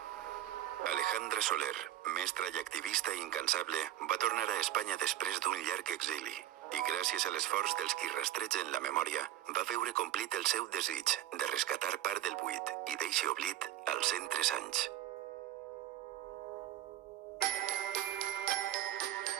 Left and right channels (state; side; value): quieter; left; 13.2 dB